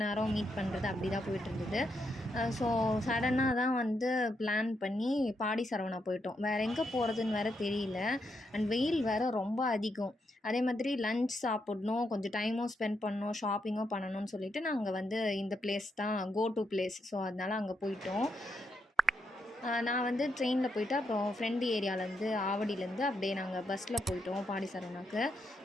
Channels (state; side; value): normal; both; correlation 0.81